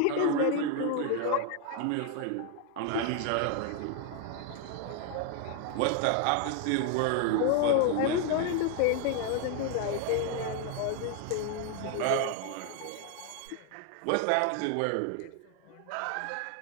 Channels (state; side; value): different; both; correlation 0.00